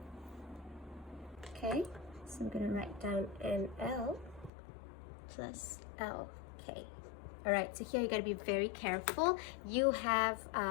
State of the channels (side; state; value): right; drops out; at 4.5 s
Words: Okay, so I'm gonna write down NL plus LK. All right, so here you gotta be very careful. You have